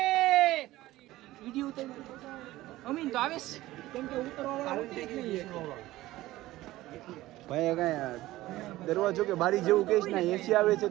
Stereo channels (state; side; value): quieter; left; 16.8 dB